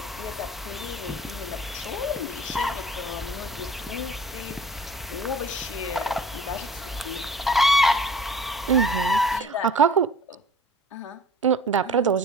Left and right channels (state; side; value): normal; both; correlation 0.47